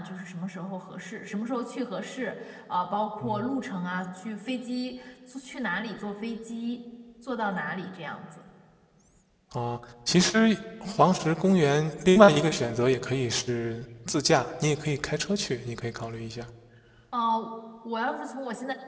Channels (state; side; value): identical; both; correlation 1.00